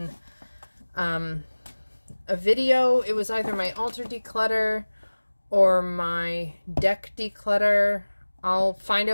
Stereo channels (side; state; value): both; inverted; correlation -1.00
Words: a video. It was either my altar declutter or my deck declutter. I'll find